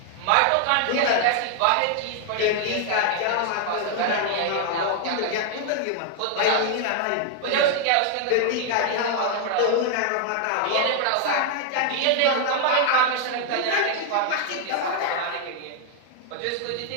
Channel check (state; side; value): different; both; correlation 0.00